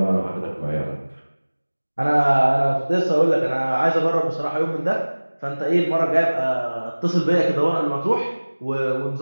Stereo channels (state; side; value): inverted; both; correlation -1.00